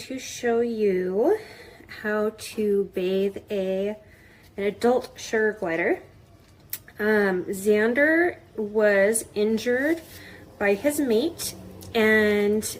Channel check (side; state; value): both; identical; correlation 1.00